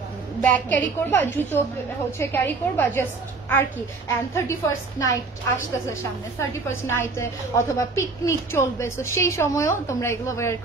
ব্যাগ ক্যারি করবা, জুতো হচ্ছে ক্যারি করবা জাস্ট আর কি। অ্যান্ড 31st নাইট আসতেছে সামনে, 31st নাইটে অথবা পিকনিক চলবে, তো সেই সময়ও তোমরা এগুলো ওয়্যার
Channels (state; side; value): quieter; left; 4.0 dB